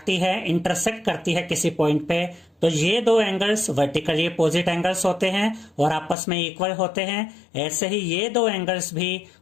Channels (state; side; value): drops out; right; at 6.2 s